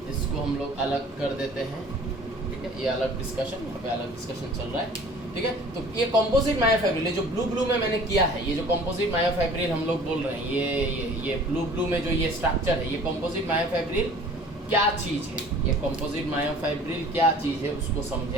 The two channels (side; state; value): both; normal; correlation 0.48